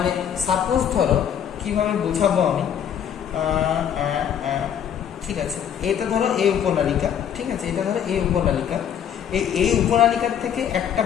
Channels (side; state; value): right; quieter; 9.0 dB